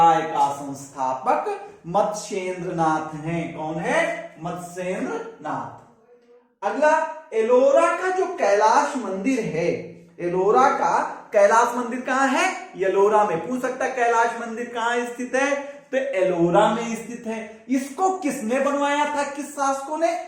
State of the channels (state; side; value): identical; both; correlation 1.00